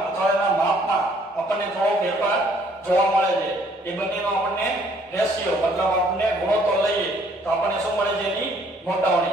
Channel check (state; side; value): normal; both; correlation 0.62